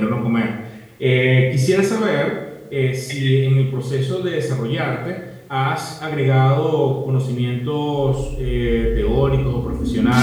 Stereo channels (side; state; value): both; identical; correlation 1.00